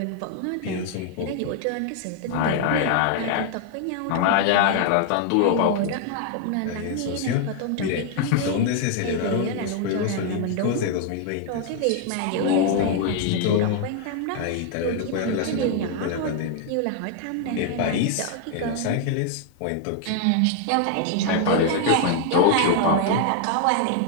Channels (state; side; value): different; both; correlation 0.00